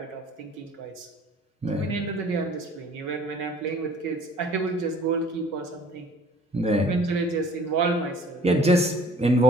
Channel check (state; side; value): normal; both; correlation 0.52